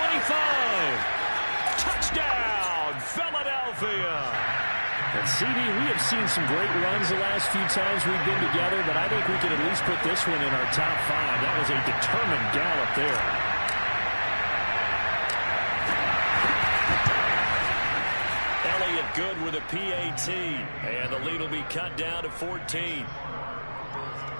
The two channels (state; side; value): inverted; both; correlation -1.00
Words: Touchdown, Philadelphia. And CD, we have seen some great runs the last few times we've been together, but I think we can at least put this one in our top 5. That was a determined gallop there. Elliott good with a PAT, and the lead will be cut down to 14.